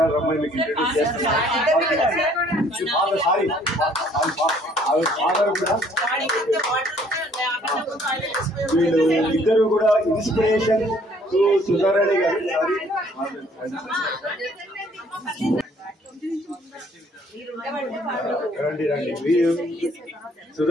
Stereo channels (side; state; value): both; normal; correlation 0.60